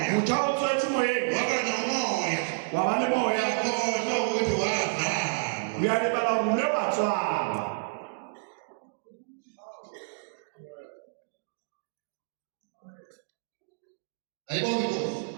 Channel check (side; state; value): left; silent; digital silence